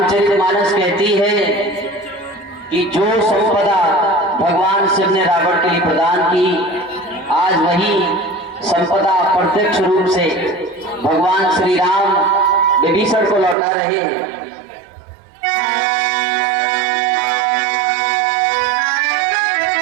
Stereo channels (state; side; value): drops out; left; at 13.6 s